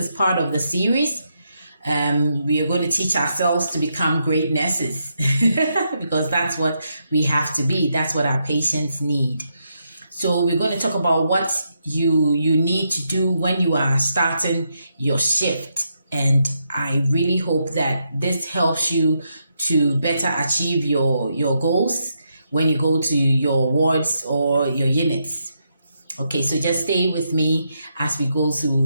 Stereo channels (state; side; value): inverted; both; correlation -0.81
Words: part of the series. We are going to teach ourselves to become great nurses because that's what we have to be. That's what our patients need. So we're going to talk about what you need to do when you are starting your shift. And I really hope that this helps you to better achieve your goals when you go to your wards or your units. Okay, so just stay with me as we go